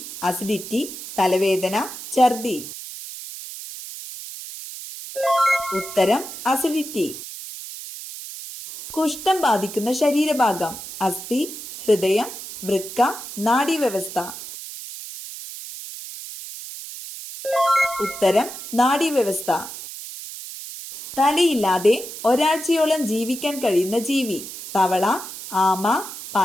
അസിഡിറ്റി, തലവേദന, ഛർദി. ഉത്തരം അസിഡിറ്റി. കുഷ്ഠം ബാധിക്കുന്ന ശരീരഭാഗം: അസ്ഥി, ഹൃദയം, വൃക്ക, നാഡീവ്യവസ്ഥ. ഉത്തരം നാഡീവ്യവസ്ഥ. തലയില്ലാതെ ഒരാഴ്ചയോളം ജീവിക്കാൻ കഴിയുന്ന ജീവി: തവള, ആമ,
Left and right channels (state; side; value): noise; right; hiss, 11 dB below the sound